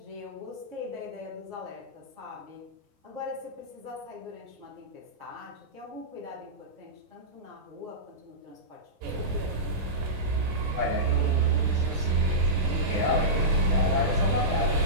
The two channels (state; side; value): late; left; 9.7 ms